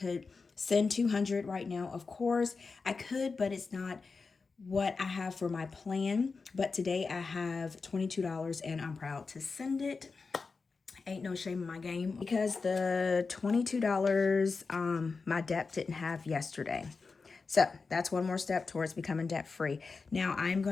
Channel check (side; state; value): right; quieter; 4.5 dB